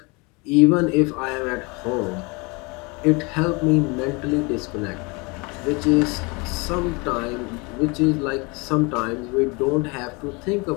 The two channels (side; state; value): right; quieter; 28.4 dB